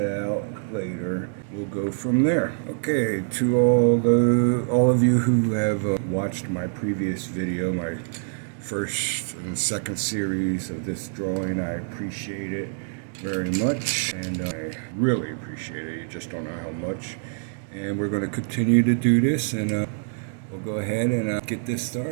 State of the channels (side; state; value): left; silent; digital silence